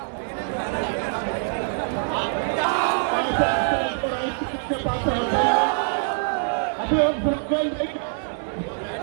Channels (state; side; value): silent; left; 62 dB below the other